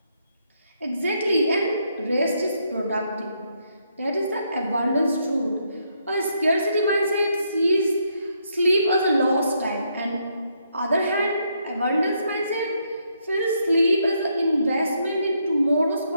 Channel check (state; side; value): inverted; both; correlation -0.75